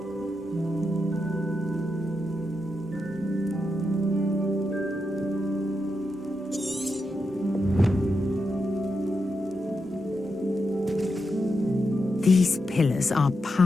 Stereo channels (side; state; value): both; normal; correlation 0.86